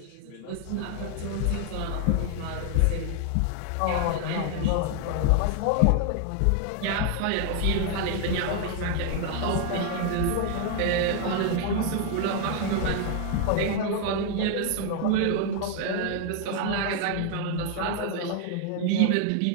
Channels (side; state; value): both; different; correlation 0.00